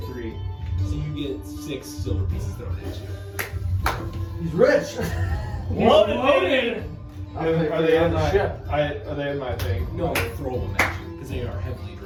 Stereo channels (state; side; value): identical; both; correlation 1.00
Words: 3. So you get 6 silver pieces thrown at you. He's rich. Loaded. Are they in my ship? Are they in my thing? No, they throw them at you because they are heavily